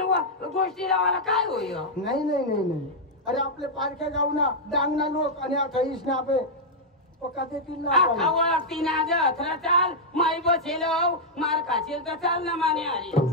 गोष्टी लावायला काय होईल नाही नाही नाही नाही अरे आपले पारख्या गाव ना डांगना लोक आणि अठ्ठावीस ना आपले पक्का देतील ना तीन आज अथरा चाल माई बसेल मार खाशील तर चाल ना माने आली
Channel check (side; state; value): both; normal; correlation -0.04